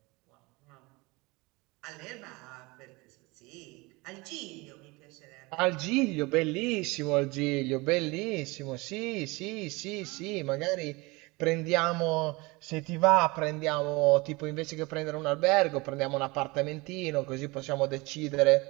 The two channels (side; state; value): left; quieter; 24.3 dB